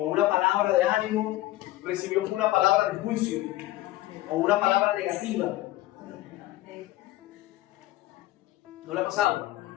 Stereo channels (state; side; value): quieter; right; 16.7 dB